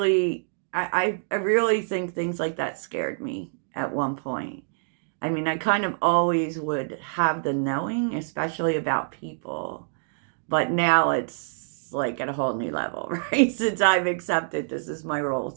I really think things like that scared me at one point. I mean, I kind of always would have the knowing, especially about people. But now it's like at a whole new level, right? Since I've accepted this is my role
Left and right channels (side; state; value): left; silent; digital silence